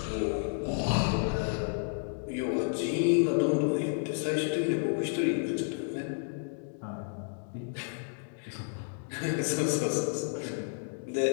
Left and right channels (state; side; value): silent; right; digital silence